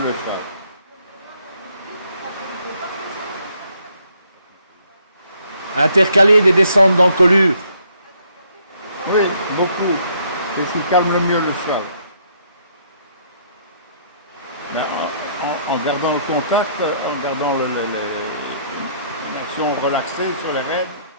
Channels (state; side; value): inverted; both; correlation -0.67